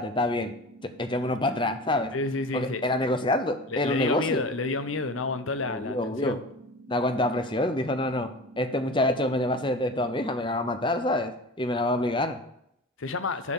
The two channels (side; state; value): both; normal; correlation 0.34